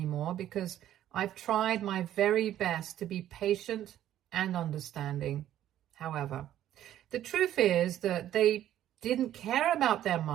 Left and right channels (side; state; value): left; quieter; 12.0 dB